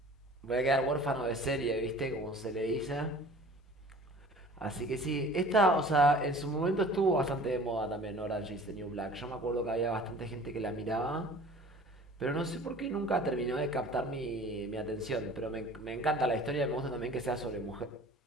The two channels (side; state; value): both; normal; correlation 0.46